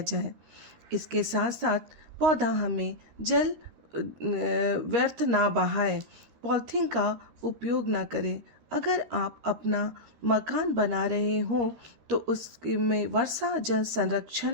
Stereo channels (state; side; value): late; left; 13 ms